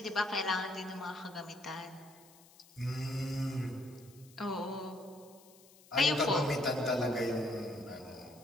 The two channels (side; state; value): left; noise; hiss, 24 dB below the sound